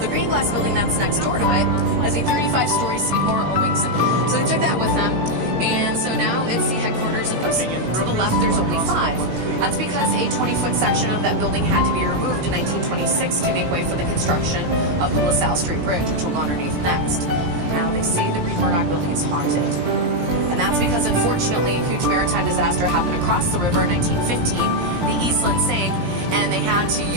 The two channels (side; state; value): left; late; 17 ms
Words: green glass building that's next door to it is a 35-story Seymour Owings. So they took that with them, and so now it's the headquarters of those. To the left, there's only 5. That's because a 20-foot section of that building had to be removed in 1926 to make way for the construction of the LaSalle Street Bridge, which will go underneath next. Now they say the Green Murdoch building is haunted. And that's because, unfortunately, a huge maritime disaster happened across the river in 1915. The Eastland sank, and they had to